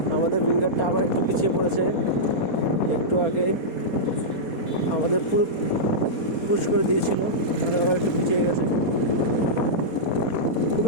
আমাদের উইঙ্গারটা আবার একটু পিছিয়ে পড়েছে। একটু আগে আমাদের পুরো পুশ করে দিয়েছিল, আবার একটু পিছিয়ে গেছে। খুব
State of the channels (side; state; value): right; late; 4.2 ms